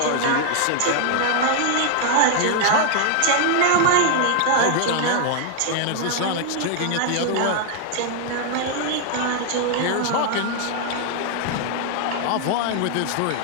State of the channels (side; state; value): both; different; correlation 0.00